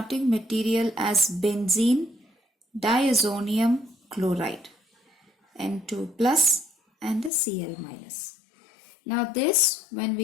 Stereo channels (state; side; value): drops out; right; at 7.3 s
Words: material as benzene diazonium chloride, N2 plus and the Cl minus. Now this, when